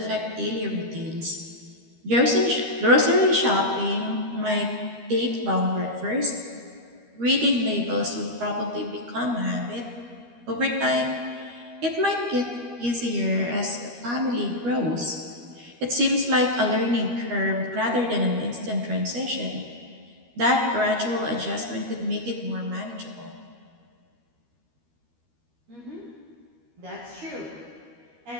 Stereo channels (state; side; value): late; left; 13 ms